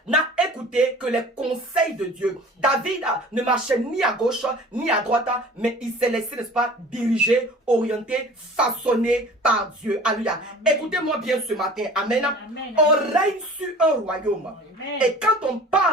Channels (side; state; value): both; normal; correlation 0.44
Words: n'a écouté que les conseils de Dieu. David ne marchait ni à gauche ni à droite, mais il s'est laissé, n'est-ce pas, diriger, orienter, façonner par Dieu. Alléluia. Écoutez-moi bien ce matin. Amen. Amen. On règne sur un royaume. Amen. Et quand on